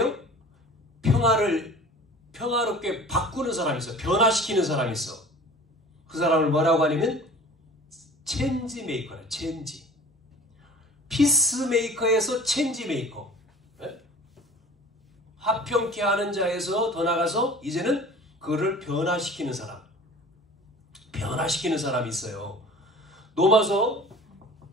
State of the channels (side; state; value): both; normal; correlation 0.44